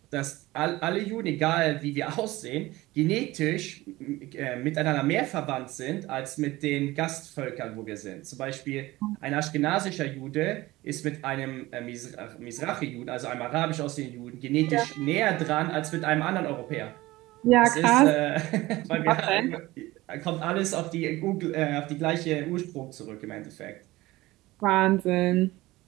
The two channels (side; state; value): left; quieter; 18.9 dB